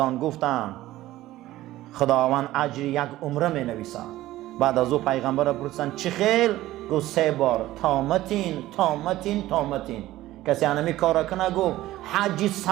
گفتن خداوند اجر یک عمره می نویسه. بعد از او پیغمبر پرسیدن چه خیل؟ گفت 3 بار تامتین تامتین تامتین. کسی انمی کار کنه گفت حج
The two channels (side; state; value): left; quieter; 15.7 dB